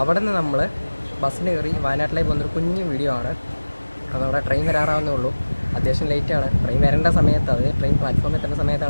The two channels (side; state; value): both; inverted; correlation -1.00